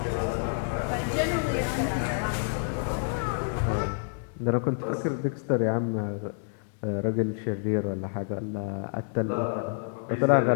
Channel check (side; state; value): right; silent; 59 dB below the other